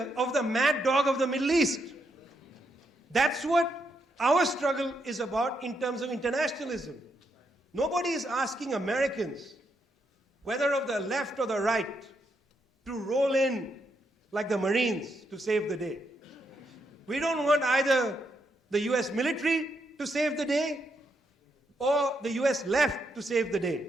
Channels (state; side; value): normal; both; correlation 0.80